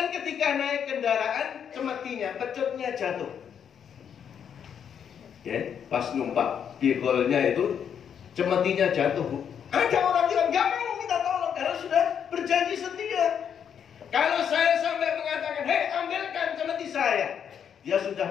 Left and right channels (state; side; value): quieter; right; 8.1 dB